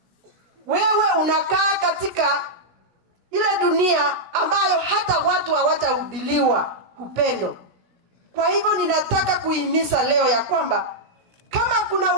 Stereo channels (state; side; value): late; left; 17 ms